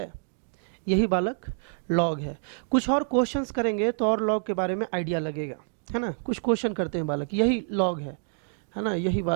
यही बालक लॉग है। कुछ और क्वेश्चंस करेंगे तो और लॉग के बारे में आइडिया लगेगा, है ना। कुछ क्वेश्चन करते हैं बालक, यही लॉग है ना, यही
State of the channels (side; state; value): left; silent; 60 dB below the other